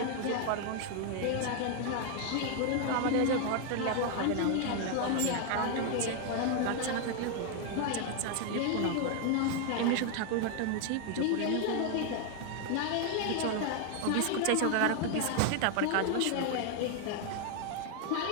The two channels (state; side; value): different; both; correlation 0.00